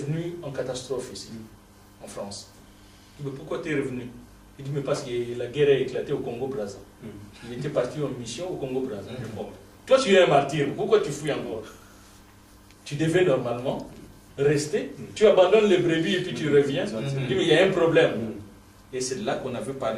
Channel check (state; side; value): identical; both; correlation 1.00